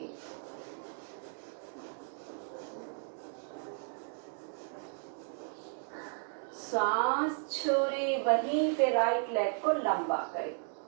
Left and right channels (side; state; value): left; silent; 55 dB below the other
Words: सांस छोड़े, वहीं पे राइट लेग को लंबा